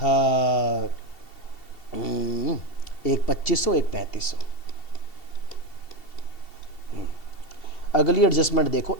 एक 2500, एक 3500। अगली एडजस्टमेंट देखो,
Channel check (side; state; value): right; late; 2.7 ms